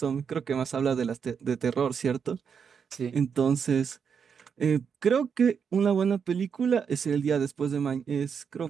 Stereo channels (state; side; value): quieter; left; 6.7 dB